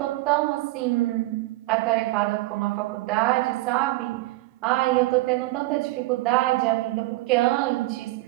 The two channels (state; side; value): quieter; left; 19.6 dB